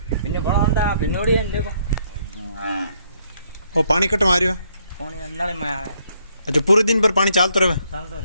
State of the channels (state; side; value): inverted; both; correlation -0.70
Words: इन्हें बड़ा अंडा भिनोड़ी है देखो। और पानी कट मारियो? पानी अंडाले में आवे। अच्छा, पूरे दिन भर पानी चालतो रहे चलतो